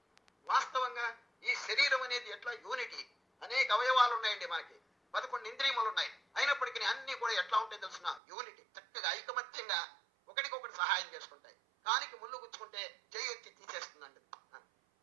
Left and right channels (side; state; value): left; drops out; at 8.2 s